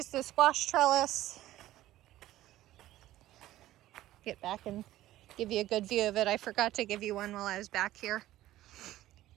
the squash trellis. Get back and give you a good view of it. I forgot to give you one while I was back here.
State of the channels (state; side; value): quieter; left; 14.9 dB